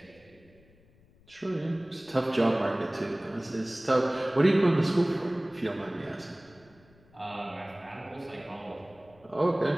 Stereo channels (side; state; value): left; noise; rumble, 29 dB below the sound